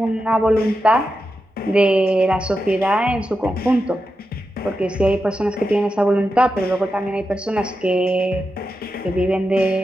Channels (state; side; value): normal; both; correlation 0.89